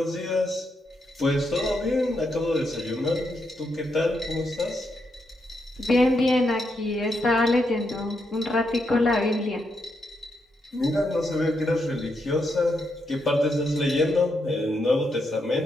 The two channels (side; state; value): both; normal; correlation 0.81